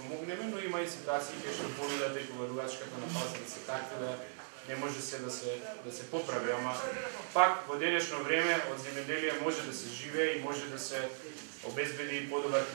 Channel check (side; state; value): left; silent; digital silence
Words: но има и ситуации кај што понудата и коварувачката на пазарот се такви да не може се да се поправи, ама пак во денешно време од земјоделие може да се живее и може да се обезбеди и подобар